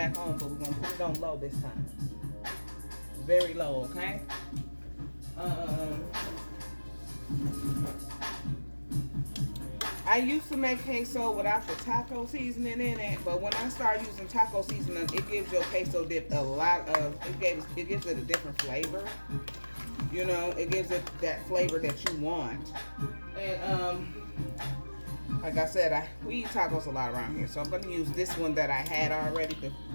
on, but we're gonna put it on low this time. Very low, okay? I used to make queso without the taco seasoning in it, but when I start using taco seasoning, it gives your queso dip it gives it a different flavor. You know, it gives it that flavor that you want. And like I said, we eat tacos a lot around here, so I'm gonna use this one that I had already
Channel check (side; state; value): both; inverted; correlation -1.00